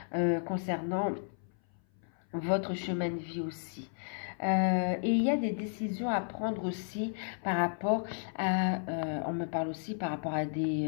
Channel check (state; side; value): silent; right; 56 dB below the other